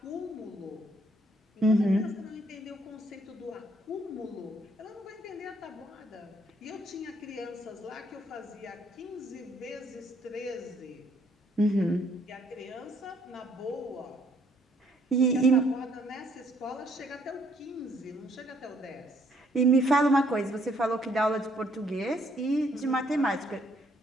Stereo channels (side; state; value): both; normal; correlation 0.67